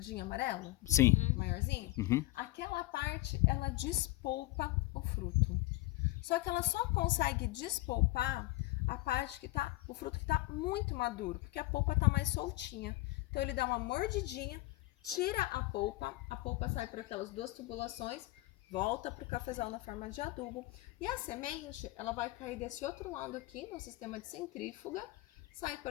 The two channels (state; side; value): quieter; right; 19.6 dB